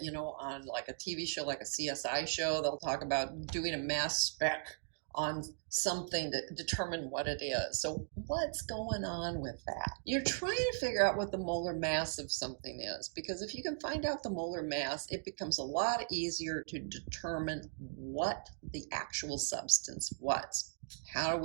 on like a TV show, like a CSI show. They'll talk about doing a mass spec on something to determine what it is. So what's going on with that? You're trying to figure out what the molar mass of something is, because if you can find out the molar mass, it becomes a lot easier to determine what the actual substance was. How do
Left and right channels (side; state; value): left; silent; digital silence